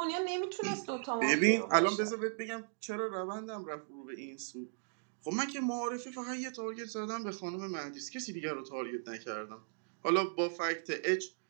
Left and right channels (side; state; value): left; silent; digital silence